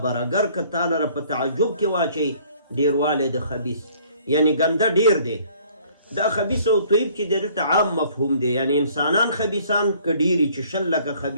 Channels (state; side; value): inverted; both; correlation -0.58